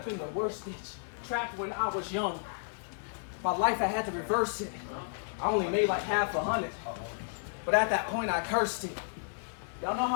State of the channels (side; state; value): right; silent; digital silence